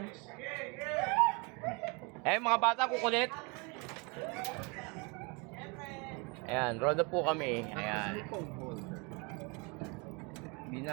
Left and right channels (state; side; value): quieter; left; 30.5 dB